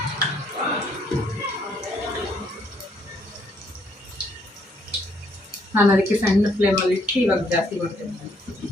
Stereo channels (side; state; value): both; normal; correlation 0.69